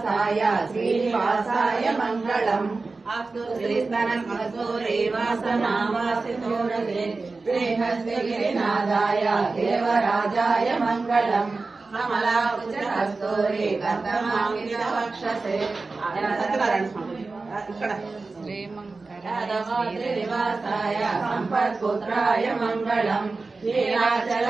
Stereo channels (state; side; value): quieter; left; 3.8 dB